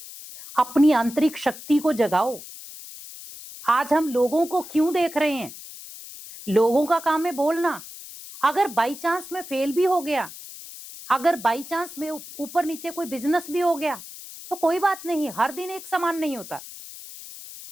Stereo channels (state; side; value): noise; left; hiss, 14 dB below the sound